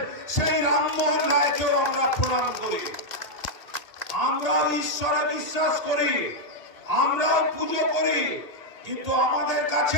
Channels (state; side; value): late; right; 1.8 ms